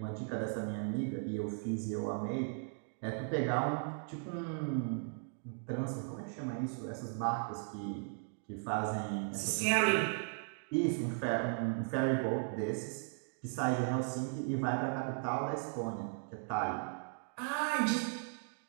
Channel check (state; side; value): silent; left; 53 dB below the other